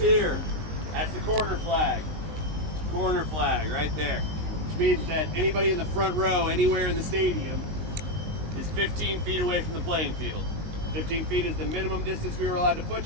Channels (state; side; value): late; left; 19 ms